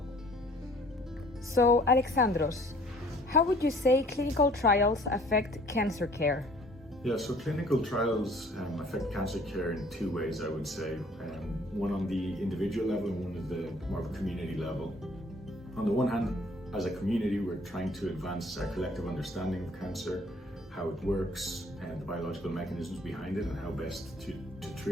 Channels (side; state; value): both; normal; correlation 0.55